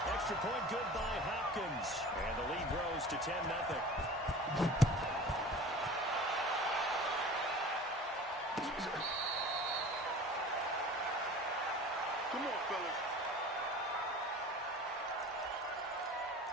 Extra point good by Hopkins. And the lead grows to 10-0. Come on, fellas.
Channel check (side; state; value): both; normal; correlation 0.40